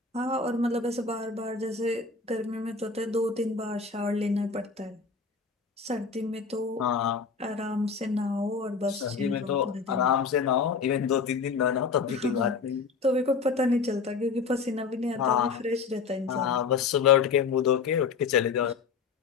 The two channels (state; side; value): quieter; right; 5.2 dB